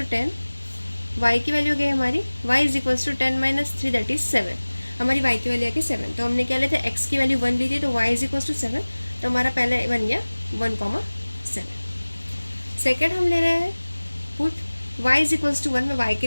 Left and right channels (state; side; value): inverted; both; correlation -1.00